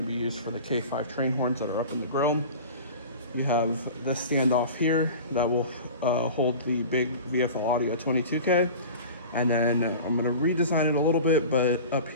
be used for the K5 train horns that are up in the grill. You have this standoff here that will hold the big VFL Audio 22K. And then I'm going to redesign it a little bit, but up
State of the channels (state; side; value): inverted; both; correlation -0.36